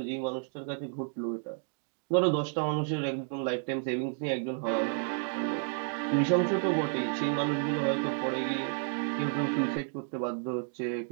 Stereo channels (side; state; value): left; silent; 57 dB below the other